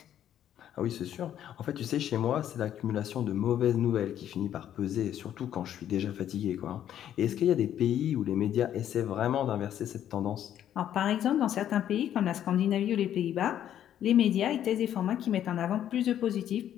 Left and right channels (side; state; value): right; quieter; 10.7 dB